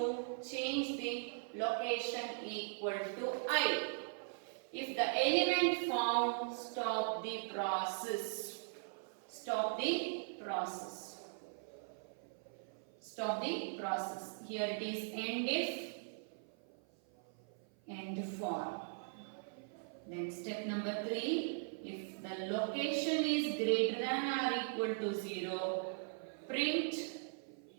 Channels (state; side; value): silent; left; 51 dB below the other